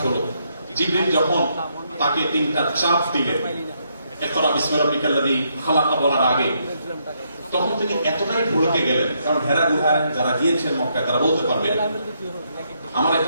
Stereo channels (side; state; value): both; inverted; correlation -0.76